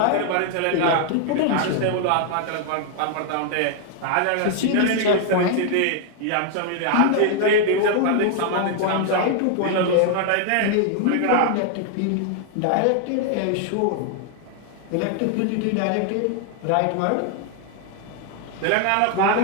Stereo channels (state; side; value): different; both; correlation 0.00